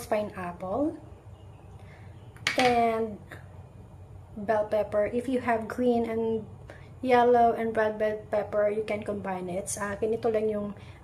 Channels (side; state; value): both; identical; correlation 1.00